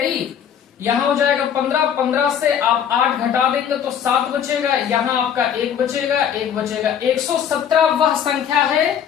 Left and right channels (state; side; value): quieter; right; 8.7 dB